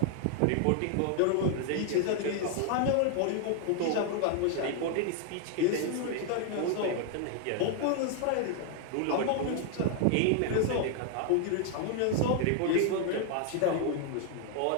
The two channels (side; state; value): both; different; correlation 0.00